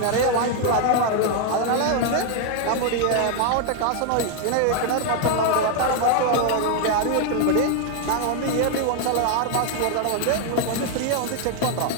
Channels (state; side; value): different; both; correlation 0.00